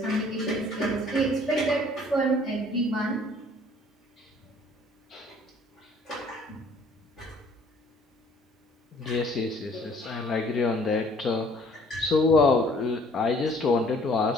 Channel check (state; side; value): normal; both; correlation 0.57